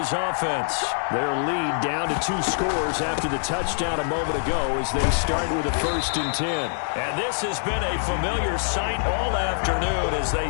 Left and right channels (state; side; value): silent; right; digital silence